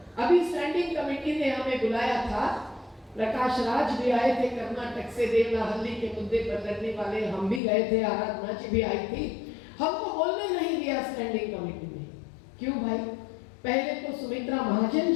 अभी स्टैंडिंग कमेटी ने हमें बुलाया था, प्रकाश राज भी आए थे कर्नाटक से, देवनाहल्ली के मुद्दे पर लड़ने वाले, हम भी गए थे, आराधना जी भी आई थी। हमको बोलने नहीं दिया स्टैंडिंग कमेटी में। क्यों भाई? पहले तो सुमित्रा महाजन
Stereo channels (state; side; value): drops out; right; at 7.6 s